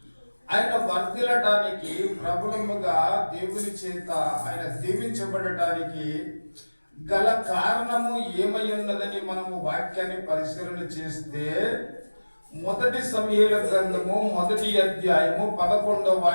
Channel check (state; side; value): inverted; both; correlation -1.00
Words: ఆయన వర్ధిల్లడానికి, ప్రబలముగా దేవుని చేత ఆయన దీవించబడటానికి గల కారణము ఏమై ఉన్నదని మనము వాక్యాన్ని పరిశీలన చేస్తే, మొదటి సమూయేలు గ్రంథము 1వ అధ్యాయము 11వ